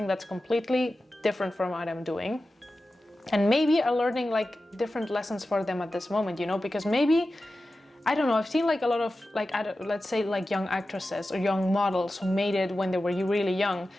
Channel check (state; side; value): normal; both; correlation 0.94